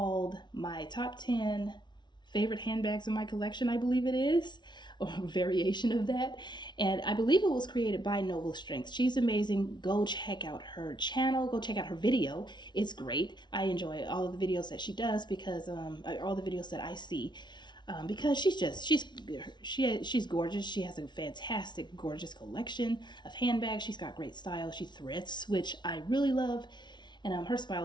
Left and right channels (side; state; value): right; late; 0.21 ms